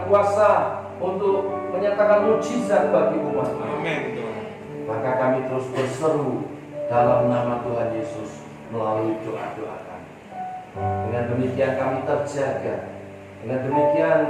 kuasa untuk menyatakan mujizat bagi umat. Amin, Tuhan. Maka kami terus berseru dalam nama Tuhan Yesus melalui doa-doa kami. Dengan demikian kami terjaga. Dengan demikian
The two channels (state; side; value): identical; both; correlation 1.00